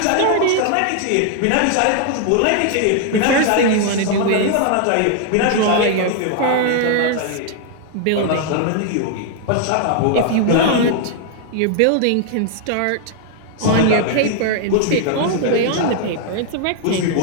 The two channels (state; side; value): different; both; correlation 0.00